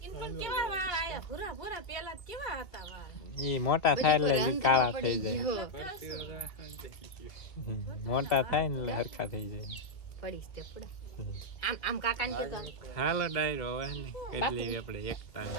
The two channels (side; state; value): right; late; 2.4 ms